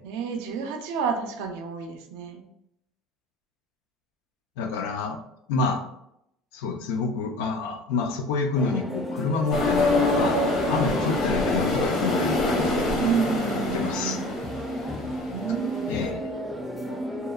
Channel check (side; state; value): both; normal; correlation 0.42